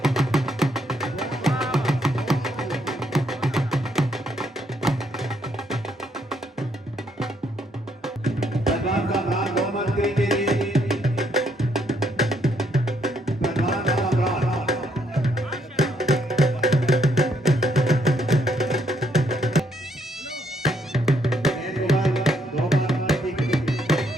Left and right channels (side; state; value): both; normal; correlation 0.72